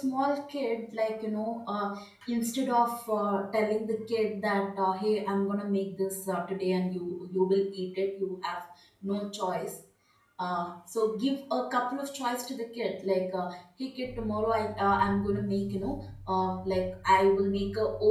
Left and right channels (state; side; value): identical; both; correlation 1.00